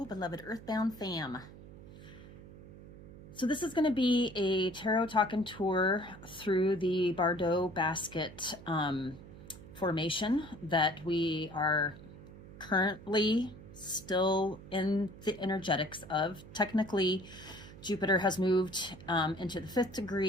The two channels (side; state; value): right; noise; hum, 17 dB below the sound